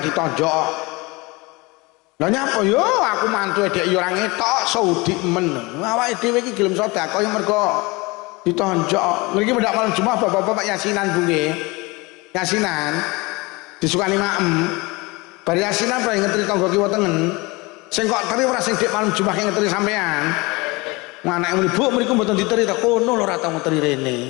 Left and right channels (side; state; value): right; quieter; 24.7 dB